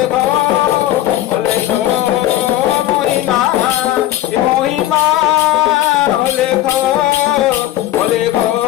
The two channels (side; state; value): right; quieter; 13.9 dB